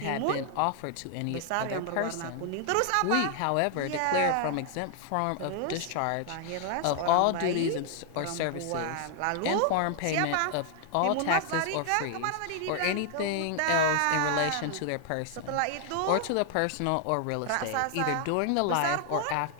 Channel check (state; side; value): different; both; correlation 0.00